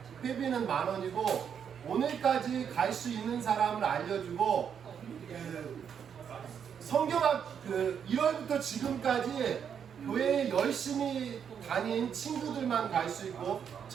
회비는 10,000원이고 오늘까지 갈 수 있는 사람을 알려주고 성경학 1월부터 지금까지 교회에 열심히 다닌 친구들만 갈 수 있고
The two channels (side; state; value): left; quieter; 7.8 dB